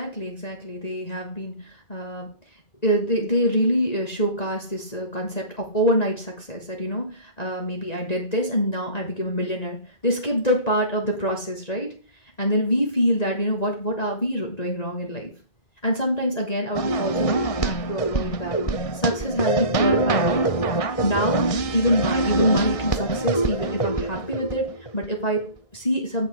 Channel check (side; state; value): right; late; 1.9 ms